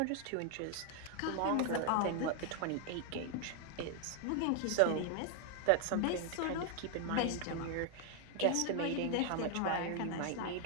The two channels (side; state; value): both; different; correlation 0.00